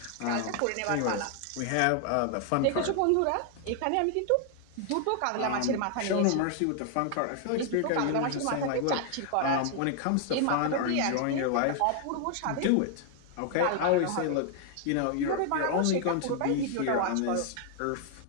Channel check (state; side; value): different; both; correlation 0.00